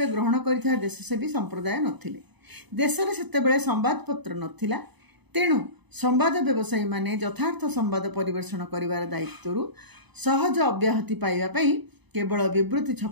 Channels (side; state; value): left; late; 0.99 ms